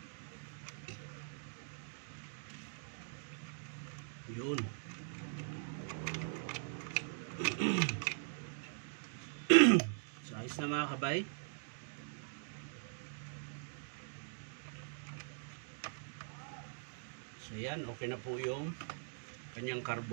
Yun. So ayos na mga kabay. So yan, okay na po yung kanyang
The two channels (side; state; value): left; silent; digital silence